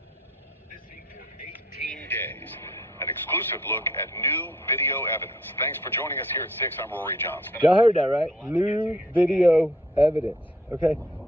Missing for 18 days. An exclusive look at new video evidence. Thanks for joining us here at 6. I'm Rory Johnson. Y'all heard that, right? New video evidence, okay?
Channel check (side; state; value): both; normal; correlation 0.60